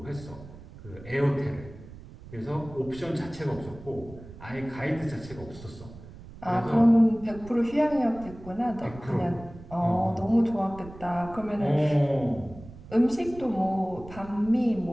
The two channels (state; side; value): noise; right; rumble, 17 dB below the sound